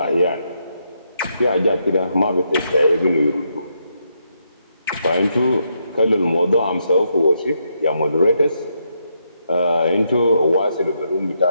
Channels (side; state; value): both; inverted; correlation -0.79